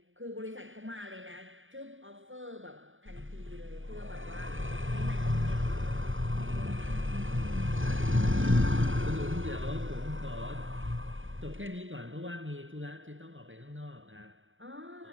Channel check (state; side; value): late; left; 0.57 ms